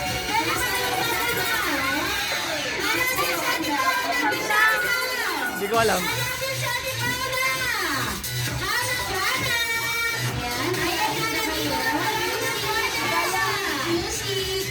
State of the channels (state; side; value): identical; both; correlation 1.00